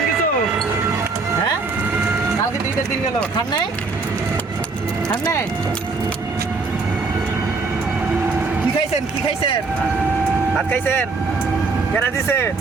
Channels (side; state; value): left; quieter; 4.1 dB